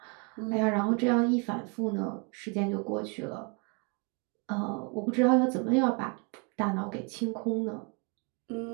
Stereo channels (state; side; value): quieter; left; 34.3 dB